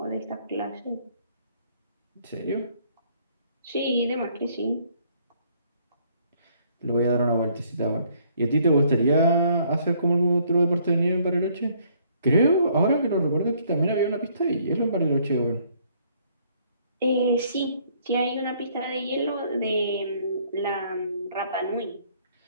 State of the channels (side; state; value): both; inverted; correlation -0.64